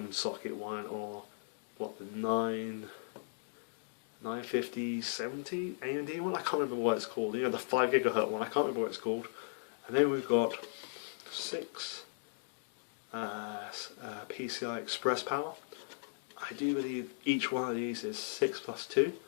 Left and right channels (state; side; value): silent; right; digital silence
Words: socket one, or what, the 950-70 AMD one. I can't remember what it's called. You know, the 5 GHz one. I can't remember what it's called. And then we've got 6 PCI Express power. I do believe each one of these is 6 plus 2,